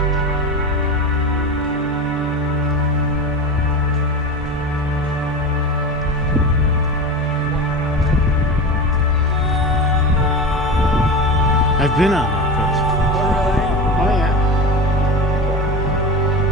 I've been on that coast. Oh yeah.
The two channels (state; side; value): normal; both; correlation 0.27